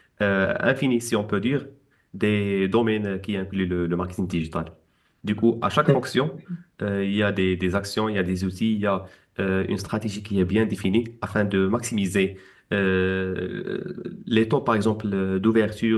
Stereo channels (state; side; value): identical; both; correlation 1.00